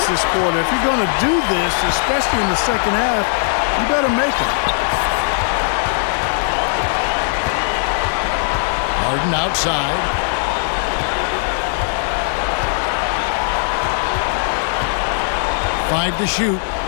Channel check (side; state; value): right; silent; digital silence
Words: this quarter. If you're going to do this, especially in the second half, you better make it. Harden outside. Five to shoot.